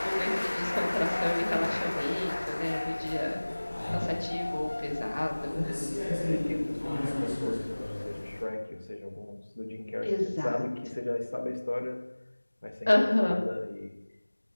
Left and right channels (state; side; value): inverted; both; correlation -1.00